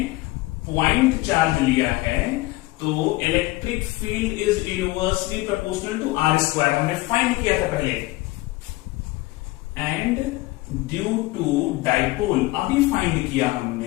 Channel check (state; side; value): quieter; right; 20.1 dB